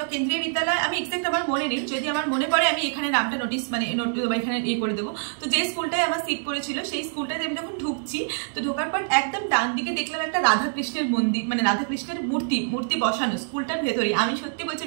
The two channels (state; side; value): silent; left; digital silence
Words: কেন্দ্রীয় বিদ্যালয় আমি এক্সাক্ট আমার মনে নেই, যদি আমার মনে পড়ে আমি এখানে নামটা নোটিস মানে এখানে করে দেবো। তো যে স্কুলটায় আমার সিট পড়েছিল সেই স্কুলটাতে আমি যখন ঢুকছি, তো ঢোকার পর একদম ডান দিকে দেখলাম একটা রাধাকৃষ্ণের মন্দির, মানে রাধাকৃষ্ণের মূর্তি বসানো স্কুলটার ভেতরে। আমি সত্যি বলছি